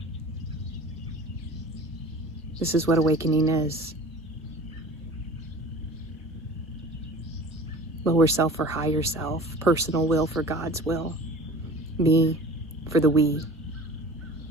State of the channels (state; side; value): normal; both; correlation 0.40